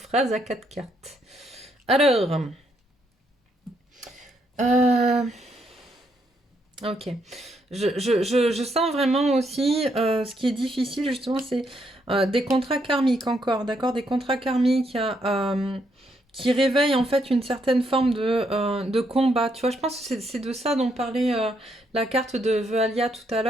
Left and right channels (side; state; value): both; normal; correlation 0.75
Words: à 4 cartes. Alors. Ok. Je sens vraiment aussi ce qui est difficile justement, c'est des contrats karmiques encore, d'accord? Des contrats karmiques qui réveille en fait une certaine forme de combat. Tu vois, je pense que c'est de ça dont parlait la carte de Vealia tout à